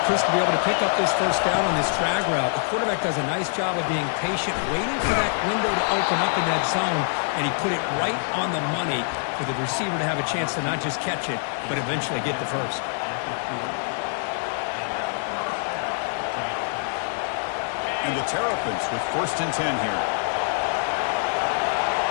Chris, to be able to pick up this 1st down on this drag route. The quarterback does a nice job of being patient, waiting for that window to open up in that zone, and he put it right on the money for the receiver to have a chance to not just catch it, but eventually get the 1st. And the Terrapins with 1st and 10 here.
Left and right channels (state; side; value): silent; right; digital silence